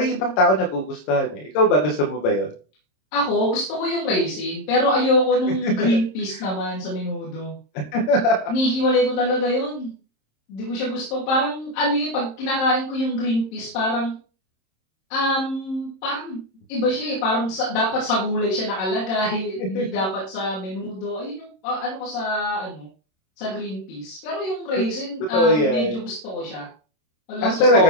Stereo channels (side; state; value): right; late; 26 ms